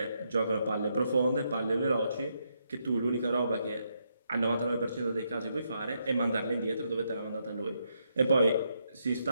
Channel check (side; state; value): both; inverted; correlation -0.78